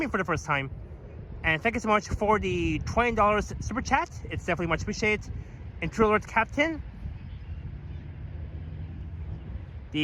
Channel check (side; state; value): both; identical; correlation 1.00